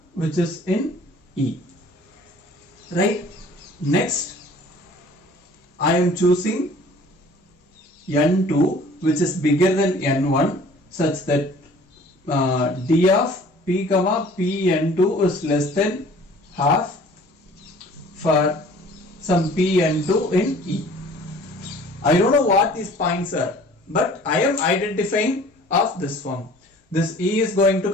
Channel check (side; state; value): both; normal; correlation 0.50